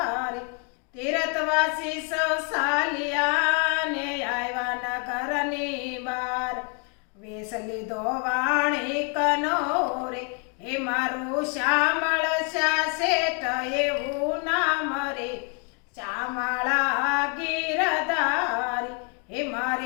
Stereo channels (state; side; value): quieter; right; 38.0 dB